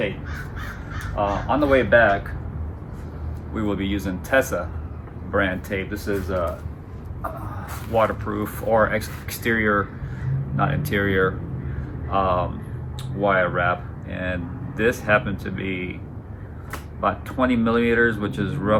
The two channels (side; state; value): both; identical; correlation 1.00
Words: On the way back we will be using Tessa brand tape. This is waterproof or exterior, not interior, wire wrap, and this happened to be about 20 millimeters, which is